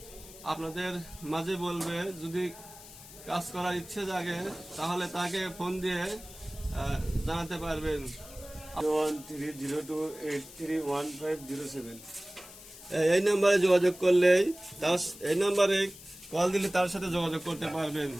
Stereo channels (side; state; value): left; noise; hiss, 17 dB below the sound